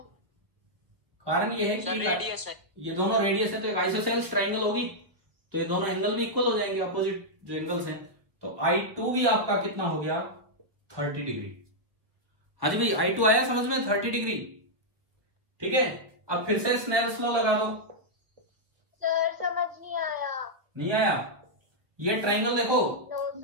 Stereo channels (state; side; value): late; left; 1.1 ms